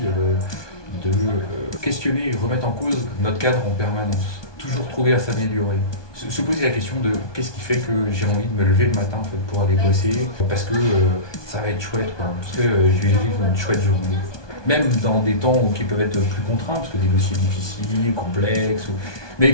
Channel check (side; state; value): right; late; 1.2 ms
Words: de questionner et remettre en cause notre cadre en permanence. Toujours trouver à s'améliorer. Se poser la question de qu'est-ce qui fait que j'ai envie de me lever le matin en fait, pour aller bosser, parce que ça va être chouette, quoi, parce que je vais vivre une chouette journée. Même dans des temps qui peuvent être plus contraints, parce que des dossiers difficiles, complexes,